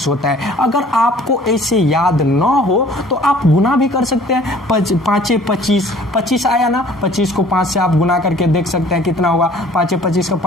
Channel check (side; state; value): both; normal; correlation 0.52